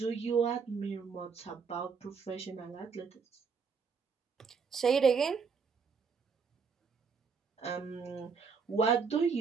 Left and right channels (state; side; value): quieter; left; 5.6 dB